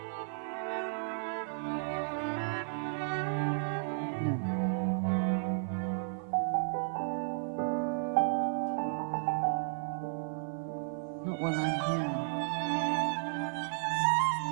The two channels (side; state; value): left; silent; 55 dB below the other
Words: while I'm here.